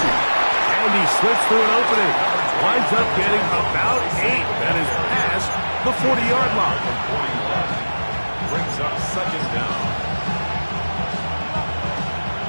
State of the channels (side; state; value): both; inverted; correlation -1.00